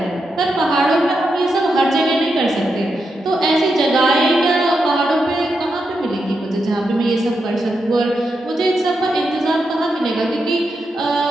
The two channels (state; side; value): normal; both; correlation 0.85